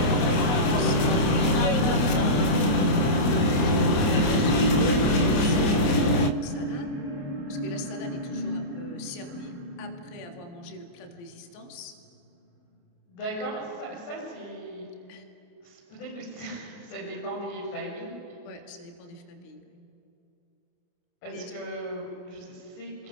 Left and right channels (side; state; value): right; late; 28 ms